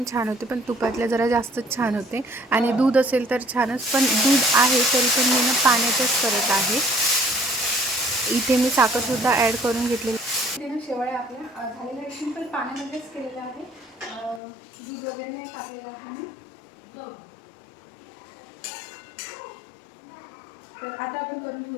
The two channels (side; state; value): right; drops out; at 14.4 s